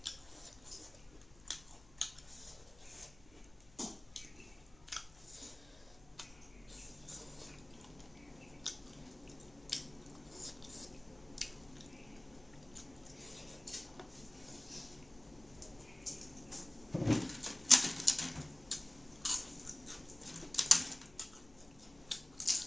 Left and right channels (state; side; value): noise; left; hum, 24 dB below the sound